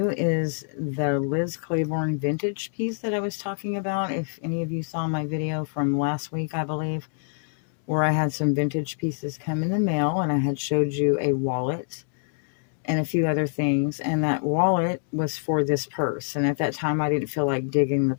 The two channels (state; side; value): silent; right; digital silence